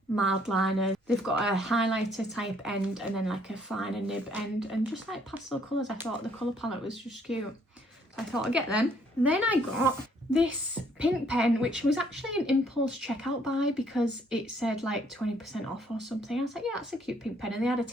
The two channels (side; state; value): both; normal; correlation 0.65